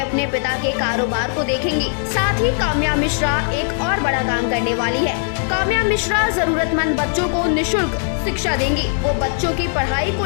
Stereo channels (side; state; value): right; silent; digital silence